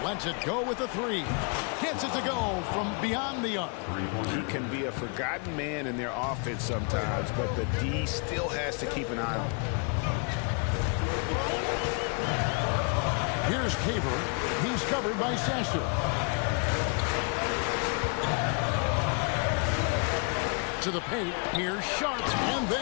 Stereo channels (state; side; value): quieter; right; 36.4 dB